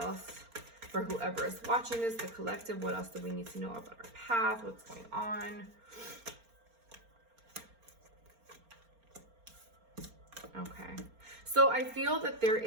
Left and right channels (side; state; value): left; late; 4.3 ms